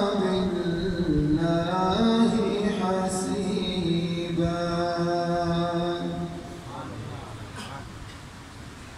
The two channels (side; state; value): both; identical; correlation 1.00